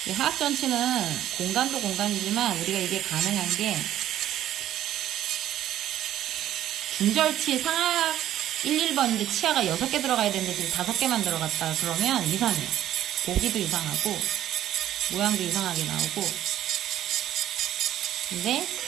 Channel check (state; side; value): quieter; left; 12.2 dB